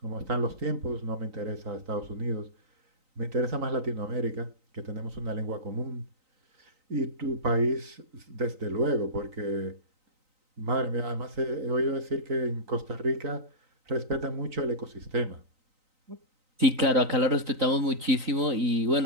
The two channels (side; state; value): left; late; 3.9 ms